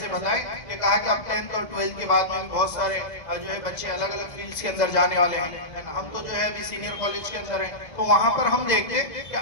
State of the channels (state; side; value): late; right; 2.0 ms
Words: बताया कि कहा कि अब 10th और 12th के बाद में बहुत सारे जो है बच्चे अलग अलग फील्ड्स के अंदर जाने वाले हैं। हम तो जो है अभी सीनियर कॉलेज के अंदर हैं, तो वहाँ पर हम देखते हैं कि